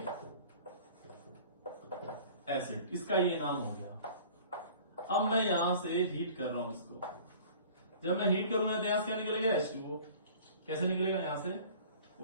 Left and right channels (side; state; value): both; inverted; correlation -0.46